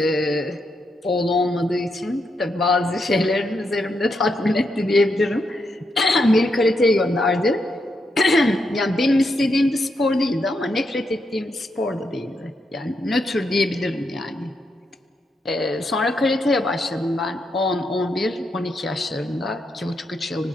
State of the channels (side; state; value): both; normal; correlation 0.82